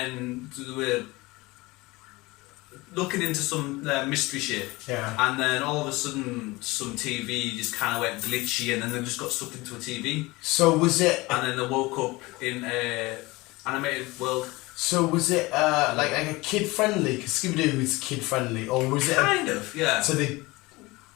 they were looking into some mystery shit. Yeah. And then all of a sudden, some TV just kind of went glitchy, and then they just got stuck into a TV. So was it? And then they woke up in a animated world. So was it like a kid friendly? Because Scooby-Doo is kid friendly, or was it? Kind of, yeah. So they.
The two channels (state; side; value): quieter; right; 22.0 dB